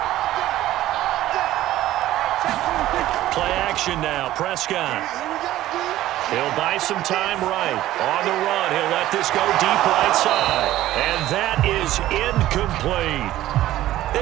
Play action now, Prescott. He'll buy some time right. On the run, he'll let this go deep right side. And that is incomplete.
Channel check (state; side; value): quieter; left; 14.5 dB